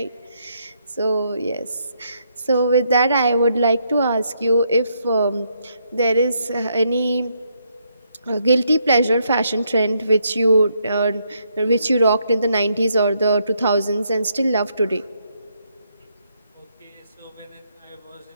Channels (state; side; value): inverted; both; correlation -0.76